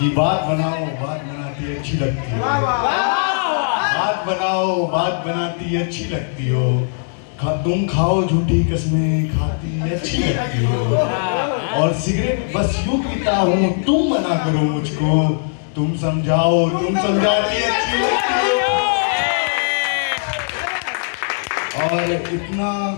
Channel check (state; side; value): silent; right; digital silence